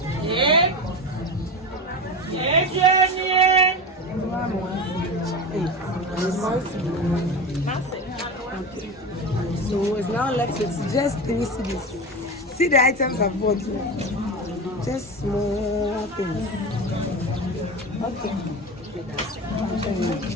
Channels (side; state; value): both; normal; correlation 0.24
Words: Okay. So it's now left with just 3 cedis. See the items I've bought. Just small things. Okay.